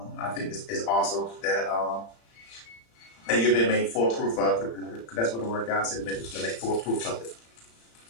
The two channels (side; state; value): right; late; 35 ms